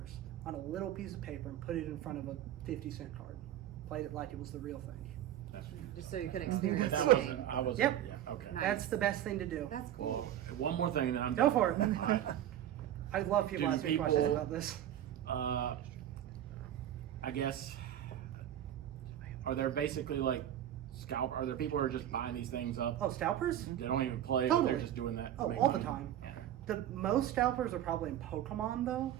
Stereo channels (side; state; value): left; quieter; 11.4 dB